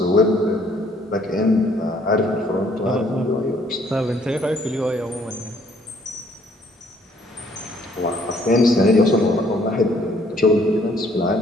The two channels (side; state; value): both; normal; correlation 0.64